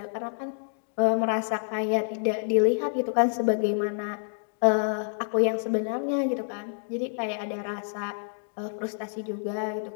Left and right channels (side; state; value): right; silent; digital silence